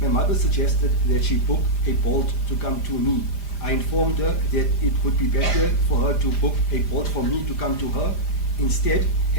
my mother suggested that she book a Bolt to come to me. I informed her that it would be better for her to book a Bolt for me to come to her instead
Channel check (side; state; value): right; late; 5.0 ms